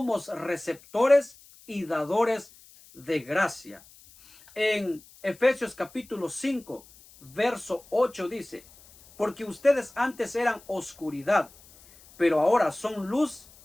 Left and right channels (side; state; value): left; noise; hiss, 24 dB below the sound